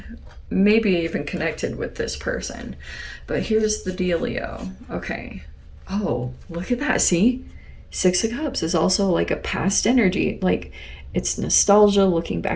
maybe even connected with this person. But here's the dealio. Okay. Oh, look at that. See? Six of Cups is also like a past energy. Like, it's nostalgia, looking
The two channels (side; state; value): both; identical; correlation 1.00